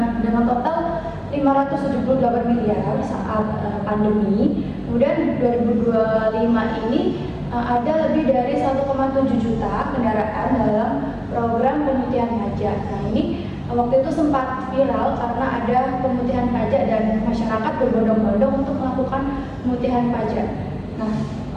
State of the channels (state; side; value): identical; both; correlation 1.00